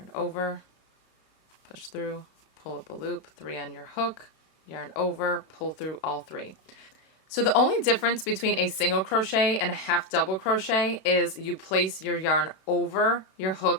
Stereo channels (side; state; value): right; late; 32 ms